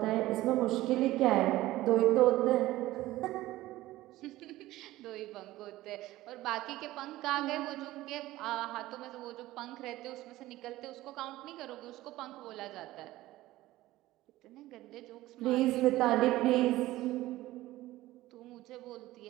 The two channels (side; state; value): left; quieter; 16.7 dB